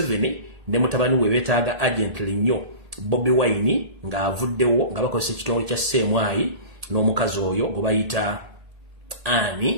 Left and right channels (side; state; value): left; late; 1.8 ms